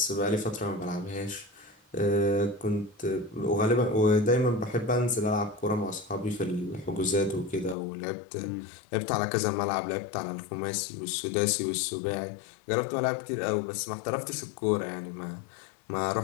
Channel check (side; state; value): right; drops out; at 7.8 s